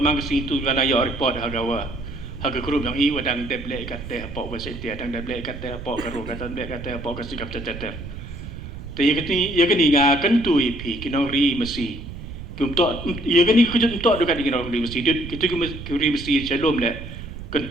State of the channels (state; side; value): noise; right; rumble, 11 dB below the sound